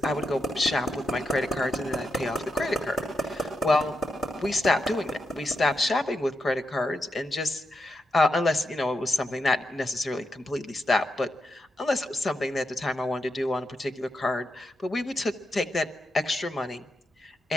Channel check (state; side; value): normal; both; correlation 0.85